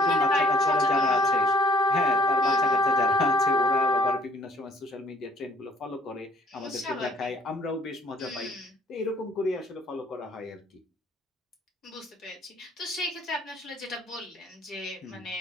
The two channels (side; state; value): both; normal; correlation 0.60